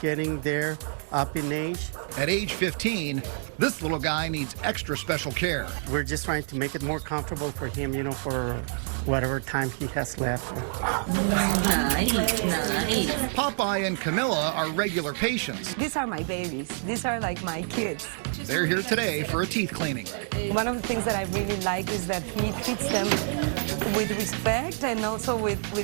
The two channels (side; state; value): left; silent; 60 dB below the other